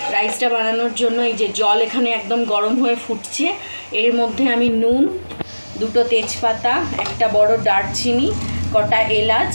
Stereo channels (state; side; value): inverted; both; correlation -1.00